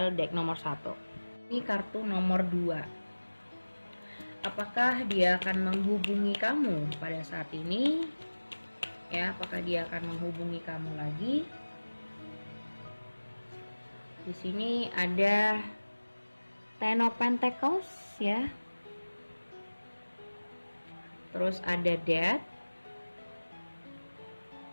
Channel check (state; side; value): inverted; both; correlation -1.00